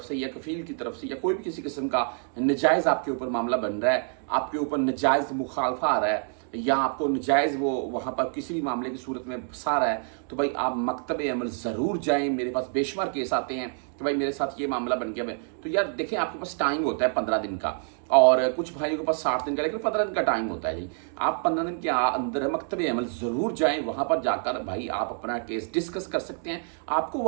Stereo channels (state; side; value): silent; left; 55 dB below the other